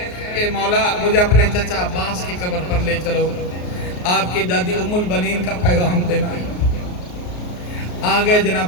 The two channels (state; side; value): late; right; 33 ms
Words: کہ مولا مجھے اپنے چچا عباس کی قبر پر لے چلو، آپ کی دادی ام البنین کا پیغام دینا۔ آگئے